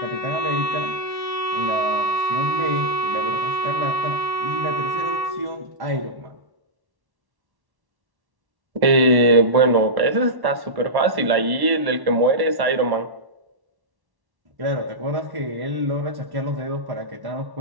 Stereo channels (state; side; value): late; left; 1.1 ms